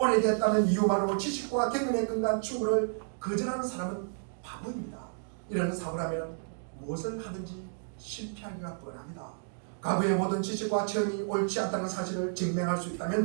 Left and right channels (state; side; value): silent; left; digital silence